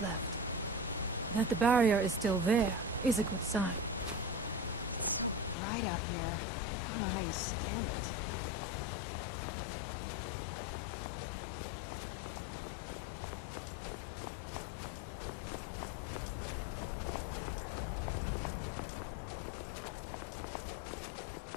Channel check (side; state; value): right; drops out; at 5.6 s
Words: left. That the barrier is still there is a good sign.